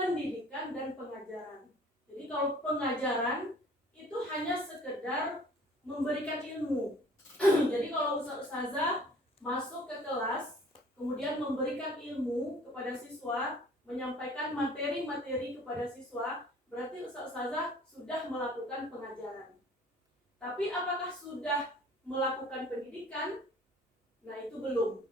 dan pengajaran. Jadi kalau pengajaran itu hanya sekedar memberikan ilmu. Jadi kalau ustazah masuk ke kelas, kemudian memberikan ilmu kepada siswa, menyampaikan materi-materi kepada siswa, berarti ustazah sudah melakukan pengajaran. Tapi apakah sudah melakukan pendidikan? Nah, itu belum.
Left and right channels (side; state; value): both; normal; correlation 0.51